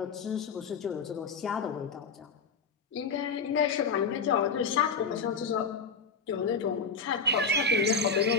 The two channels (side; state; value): right; quieter; 5.0 dB